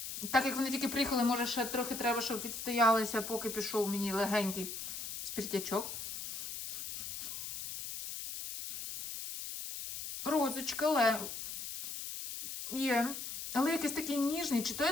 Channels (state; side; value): noise; left; hiss, 7 dB below the sound